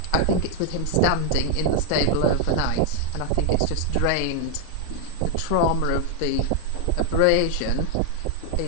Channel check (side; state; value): both; different; correlation 0.00